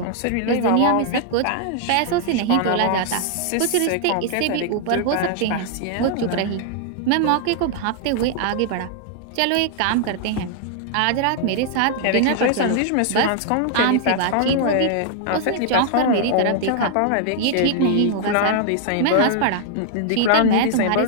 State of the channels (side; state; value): both; different; correlation -0.01